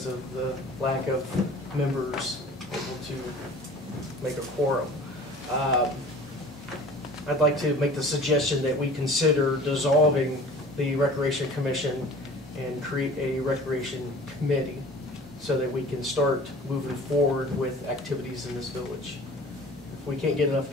of the lack of members able to make a quorum. I'd like to make the suggestion that we consider dissolving the Recreation Commission and create a Recreation Committee so that we can start moving forward with activities in this village. we can't get enough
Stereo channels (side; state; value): right; noise; hum, 24 dB below the sound